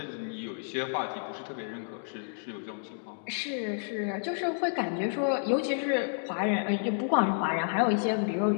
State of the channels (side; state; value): right; silent; digital silence